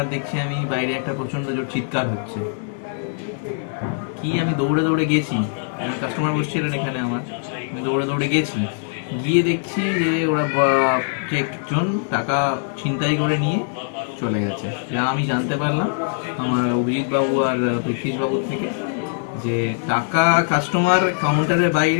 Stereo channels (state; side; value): silent; right; digital silence